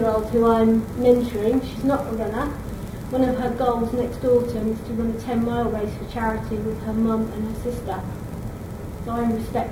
who I'm mentoring. She's not a runner. One of her goals next autumn is to run a 10-mile race for charity with her mum and her sister. So I'm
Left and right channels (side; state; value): both; identical; correlation 1.00